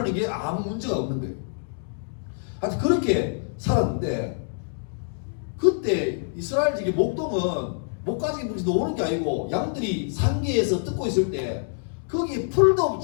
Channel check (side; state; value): right; silent; digital silence